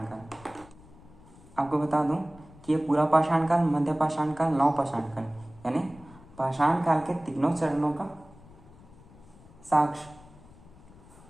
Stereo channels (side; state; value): left; noise; rumble, 22 dB below the sound